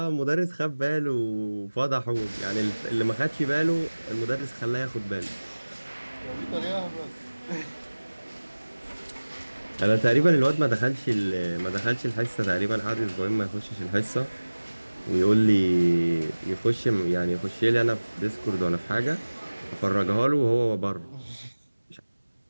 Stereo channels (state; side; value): inverted; both; correlation -1.00